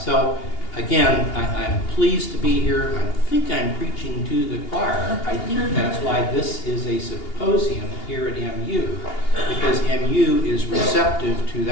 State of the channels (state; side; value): late; right; 2.8 ms